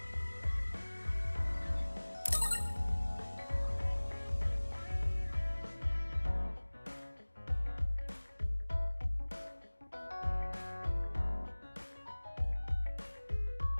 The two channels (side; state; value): both; inverted; correlation -1.00